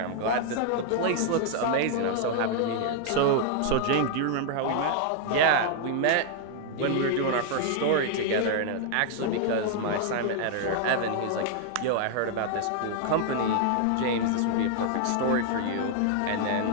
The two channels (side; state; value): both; different; correlation 0.00